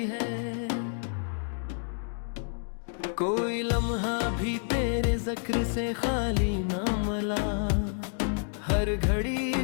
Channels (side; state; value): right; silent; digital silence